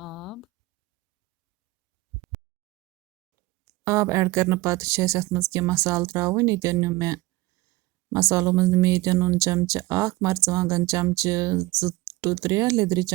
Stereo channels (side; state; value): left; quieter; 20.0 dB